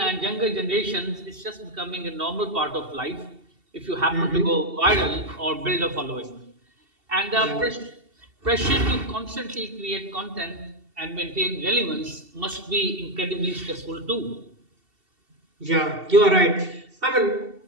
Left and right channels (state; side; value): late; left; 2.7 ms